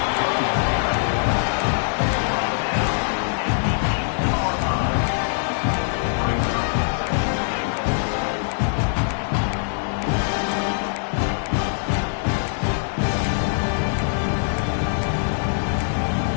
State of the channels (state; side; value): silent; right; digital silence